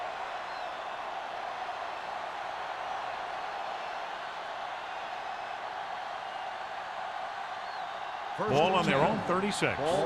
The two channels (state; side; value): identical; both; correlation 1.00